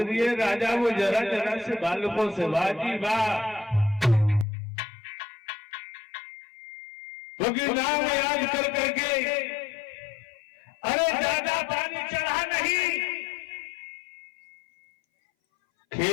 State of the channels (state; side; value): drops out; right; at 4.5 s